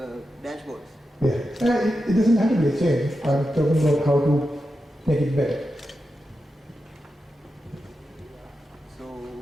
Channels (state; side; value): normal; both; correlation 0.89